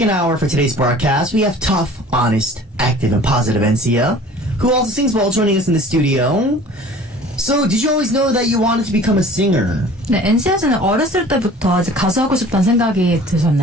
hour for today's broadcast, we have tough, honest, active, and positive NC.A, who also sings well, joining us in the studio. So, did you always know that you wanted to become a singer? 네, NC.A는 어렸을 때부터 이제 가수하고 싶다는 생각이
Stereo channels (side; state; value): both; normal; correlation 0.46